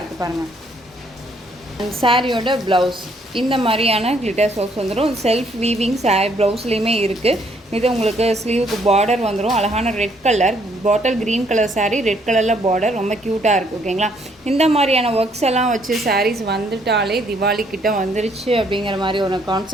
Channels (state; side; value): normal; both; correlation 0.68